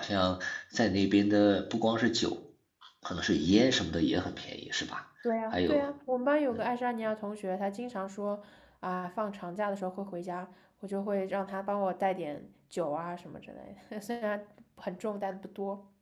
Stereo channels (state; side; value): identical; both; correlation 1.00